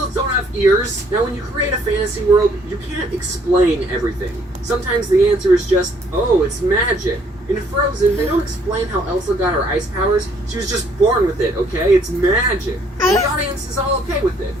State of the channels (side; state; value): both; normal; correlation 0.64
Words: don't have ears. Now, when you create a fantasy world, you can't explain everything. Sometimes the answer is just, oh, it's magic. In Frozen, they don't explain how Elsa got her ice powers. She was just born with it, okay? It's magic. And the audience is all okay with it,